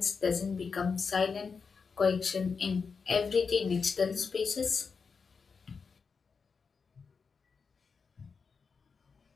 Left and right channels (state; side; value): quieter; right; 5.3 dB